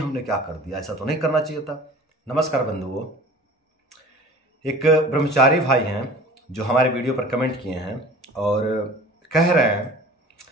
क्या कर दिया, ऐसा तो नहीं करना चाहिए था। नमस्कार बंधुओं, एक ब्रह्मचारी भाई हैं जो हमारे वीडियो पर कमेंट किए हैं और कह रहे हैं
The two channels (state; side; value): normal; both; correlation 0.43